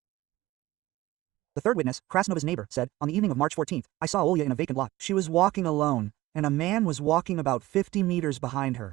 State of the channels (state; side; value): quieter; left; 17.7 dB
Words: the third witness, Krasnova's neighbor, said, "On the evening of March 14th, I saw Olya in a vacant lot. She was walking alone, and a man was walking about 50 meters behind